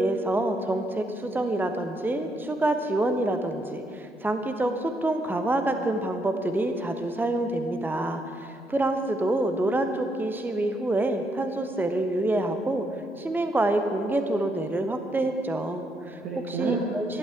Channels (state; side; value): normal; both; correlation 0.76